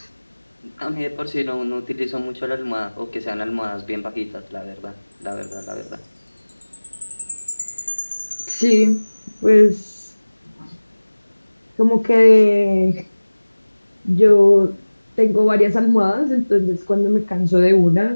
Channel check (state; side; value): inverted; both; correlation -1.00